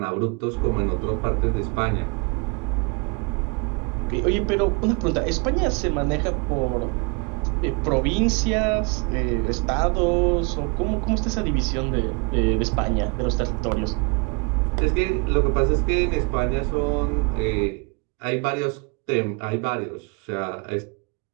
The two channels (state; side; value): quieter; left; 32.5 dB